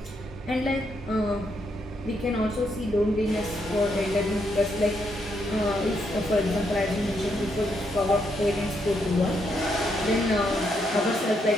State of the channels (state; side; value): normal; both; correlation 0.77